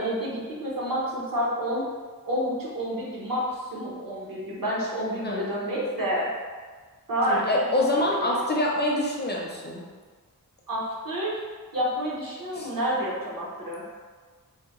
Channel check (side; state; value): both; normal; correlation -0.04